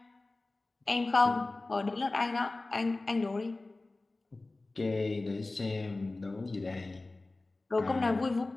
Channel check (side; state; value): right; quieter; 3.2 dB